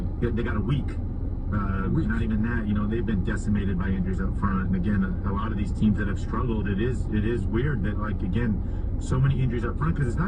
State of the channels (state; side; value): identical; both; correlation 1.00